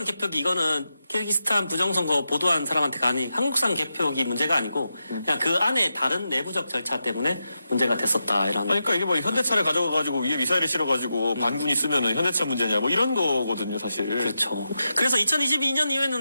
개표기 이거는 키르기스탄 부정선거 보도한 사람한테가 아닌 한국산 개표기 문제가 아니고 그냥 그 안에 다른 내부적 절차 때문에 문제가 됐었다 이런. 그러니까 이게 뭐 현대차를 가져가가지고 위에 미사일을 실어가지고 반군이 쓰면은 현대차 문제냐 뭐 이런 거거든요 사실. 그렇죠. 그래서 2022년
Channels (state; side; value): inverted; both; correlation -0.88